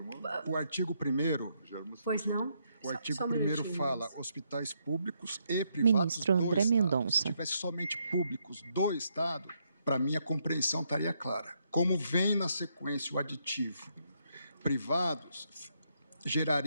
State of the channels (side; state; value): both; inverted; correlation -0.76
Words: o artigo 1º... Pois não? O artigo 1º fala hospitais públicos e privados Ministro André Mendonça. Se tivesse somente públicos do Estado, para mim a compreensão estaria clara. Como vem na sequência o aditivo privados,